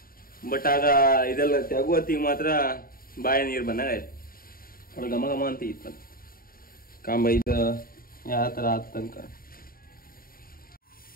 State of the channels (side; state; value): right; late; 0.42 ms